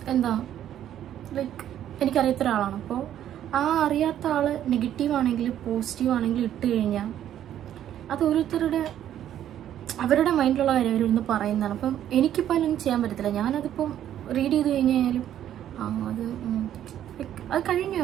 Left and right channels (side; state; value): left; quieter; 11.0 dB